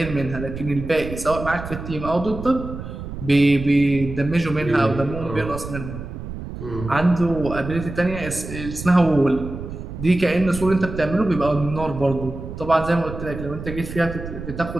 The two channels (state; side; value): noise; right; rumble, 9 dB below the sound